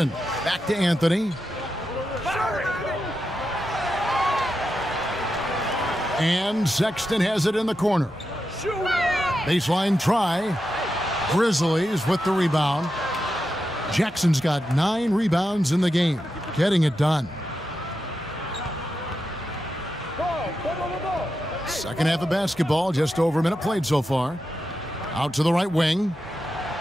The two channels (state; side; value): normal; both; correlation 0.88